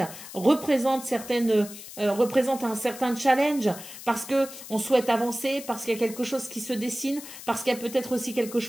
représente un certain challenge parce que on souhaite avancer, parce qu'il y a quelque chose qui se dessine, parce qu'il y a peut-être aussi quelque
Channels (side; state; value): left; noise; hiss, 14 dB below the sound